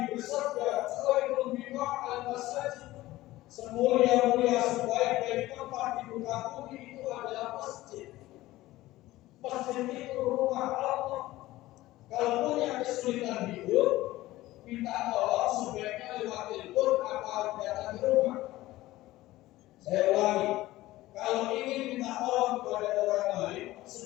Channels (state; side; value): quieter; right; 17.1 dB